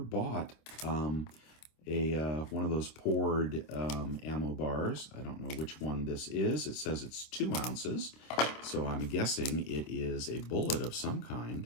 one of those poured ammo bars. I don't know which one this is. It says it's 2 ounces, so I'm guessing it is a bullet of some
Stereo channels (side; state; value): right; late; 26 ms